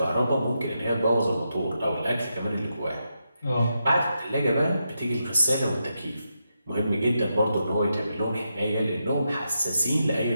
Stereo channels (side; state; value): both; inverted; correlation -0.85